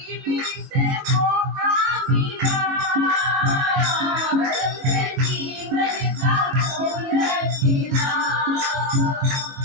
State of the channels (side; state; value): left; late; 22 ms